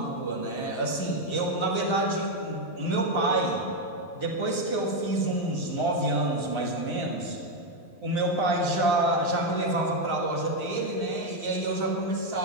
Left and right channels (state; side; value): late; right; 11 ms